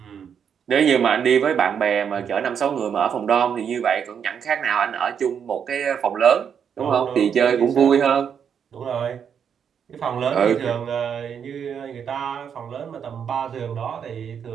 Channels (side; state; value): left; quieter; 7.6 dB